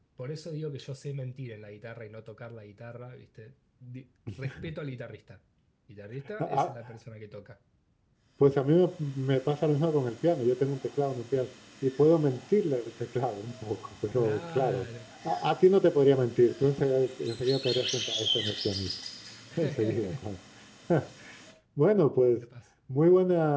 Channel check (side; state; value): both; identical; correlation 1.00